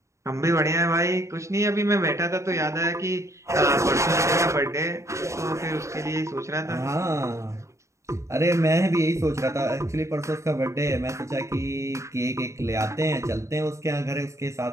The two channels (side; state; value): left; late; 0.14 ms